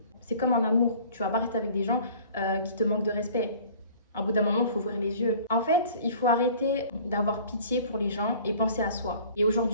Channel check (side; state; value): both; inverted; correlation -0.48